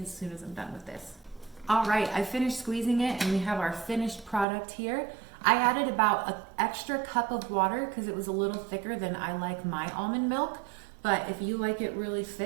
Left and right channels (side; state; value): left; drops out; at 4.5 s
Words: as soon as I'm done with this. All right, I finished squeezing it and we have our finished product here. I added about an extra cup of water because it was a little thicker than I like my almond milk. But if you like it really